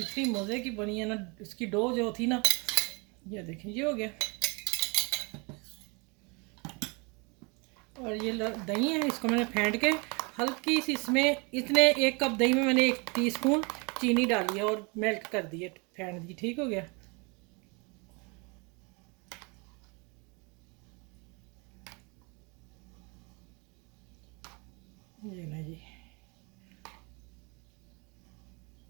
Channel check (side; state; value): left; quieter; 30.6 dB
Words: मज़े की बनी है ना। इसकी डो जो थी ना, ये देखें ये हो गया। और ये दही है, इसको मैंने फेंट के हल्की सी इसमें, इतने 1 कप दही में मैंने 1 टीस्पून चीनी डाली है और मेल्ट कर दी है, फेंट दी, ठीक हो गया। ये ना जी,